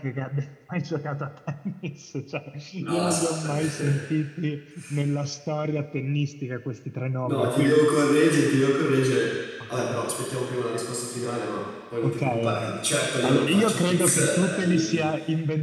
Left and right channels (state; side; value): identical; both; correlation 1.00